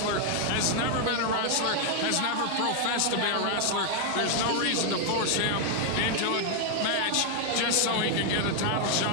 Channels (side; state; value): both; different; correlation 0.00